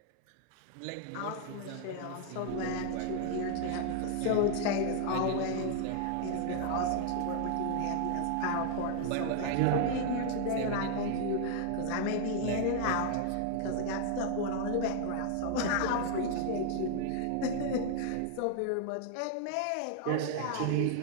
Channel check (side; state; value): both; different; correlation 0.00